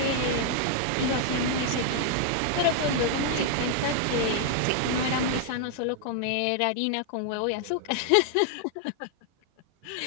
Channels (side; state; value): both; different; correlation 0.00